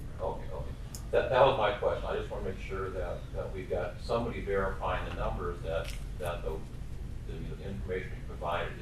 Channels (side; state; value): both; identical; correlation 1.00